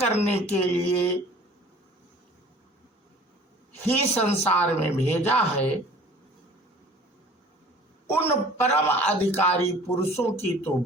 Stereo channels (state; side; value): normal; both; correlation 0.49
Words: के लिए ही संसार में भेजा है, उन परम अधिकारी पुरुषों की तो